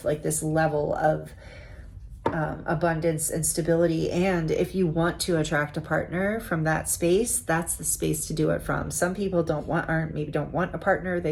like this level of abundance and stability. And if you want to attract a partner from that space, that's the space to do it from. Some people don't want a partner.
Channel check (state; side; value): identical; both; correlation 1.00